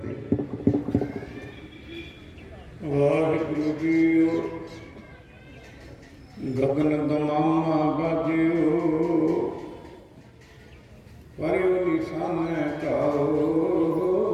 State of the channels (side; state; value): both; identical; correlation 1.00